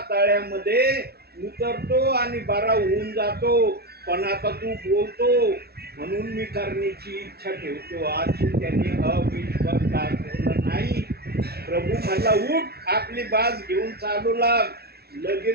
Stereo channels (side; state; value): left; late; 0.46 ms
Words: तळ्यामध्ये उतरतो आणि बरा होऊन जातो. पण आता तू बोलतो म्हणून मी करण्याची इच्छा ठेवतो. आज त्याने अविश्वास दाखवला नाही. प्रभू म्हणला उठ, आपली बाज घेऊन चालू लाग.